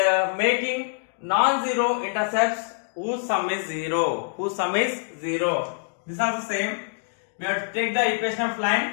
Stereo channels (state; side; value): silent; right; digital silence